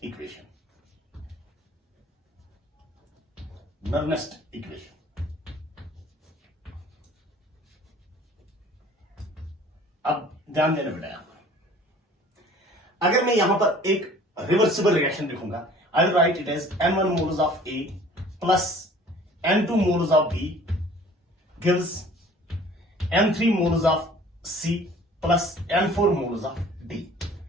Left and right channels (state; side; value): normal; both; correlation 0.50